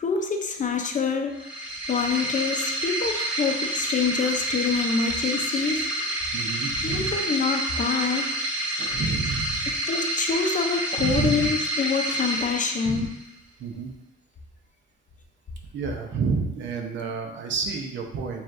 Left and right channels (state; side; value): normal; both; correlation 0.32